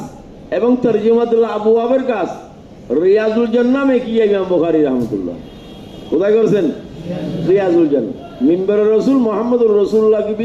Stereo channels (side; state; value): both; identical; correlation 1.00